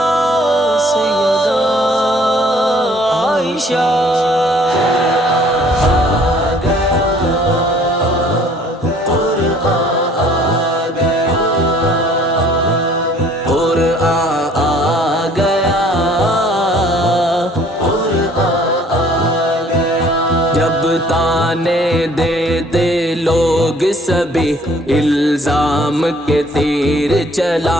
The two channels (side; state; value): both; normal; correlation 0.57